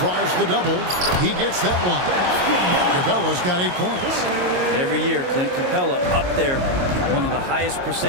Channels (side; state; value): left; late; 22 ms